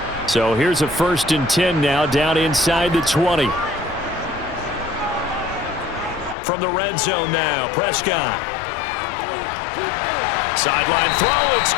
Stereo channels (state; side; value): drops out; right; at 6.4 s